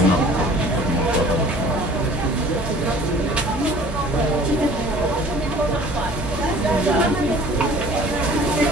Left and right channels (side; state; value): both; normal; correlation 0.48